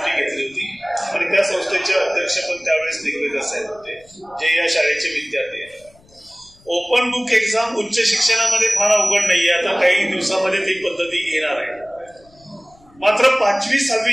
घेतली होती आणि त्या संस्थेचे अध्यक्ष पण त्यावेळेस दिग्विजय साहेब होते, जे या शाळेचे विद्यार्थी आहेत. ओपन बुक एक्झाम उच्च शिक्षणामध्ये फार अवघड नाहीये, आता काही दिवसामध्ये ती पद्धती येणार आहे. मात्र 5वी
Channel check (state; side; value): noise; left; rumble, 29 dB below the sound